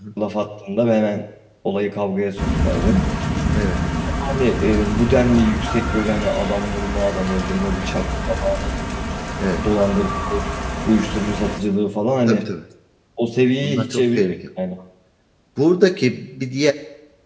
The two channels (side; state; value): both; identical; correlation 1.00